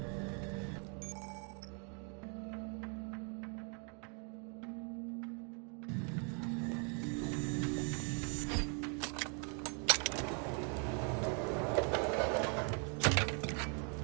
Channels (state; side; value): quieter; left; 39.2 dB